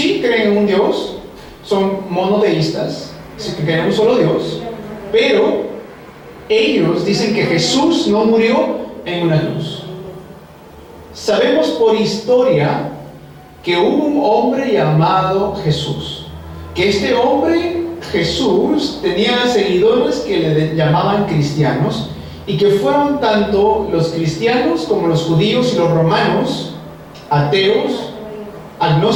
creen en un Dios, son monoteístas, creen en un solo Dios, pero ellos dicen que Jesús no murió en una cruz. Sabemos por historia que hubo un hombre llamado Jesús, que este hombre Jesús tenía seguidores que le llamaban cristianos, y que fueron tanto los cristianos como los judíos y los romanos, ateos,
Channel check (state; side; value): identical; both; correlation 1.00